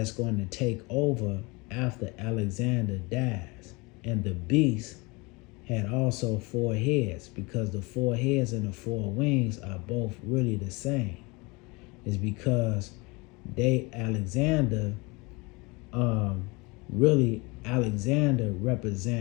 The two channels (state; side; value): quieter; right; 26.3 dB